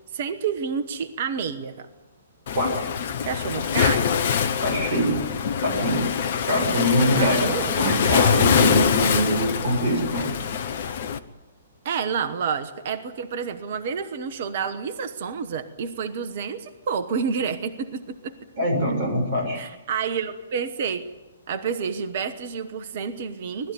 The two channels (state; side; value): inverted; both; correlation -0.50